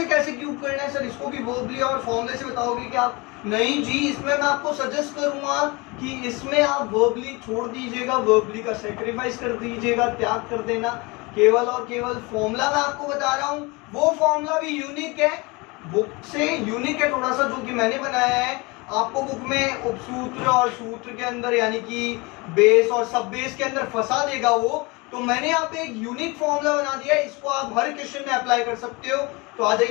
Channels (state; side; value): quieter; right; 26.0 dB